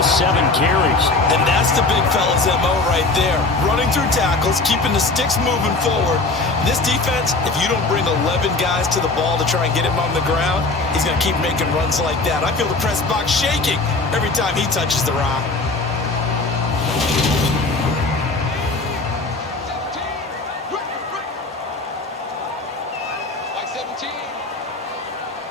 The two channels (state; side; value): quieter; right; 3.4 dB